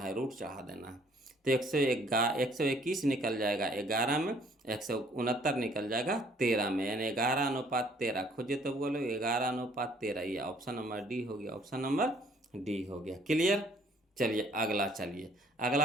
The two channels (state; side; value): normal; both; correlation 0.61